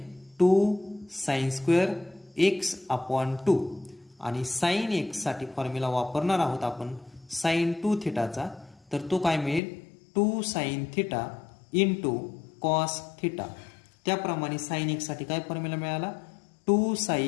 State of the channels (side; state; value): right; drops out; at 9.6 s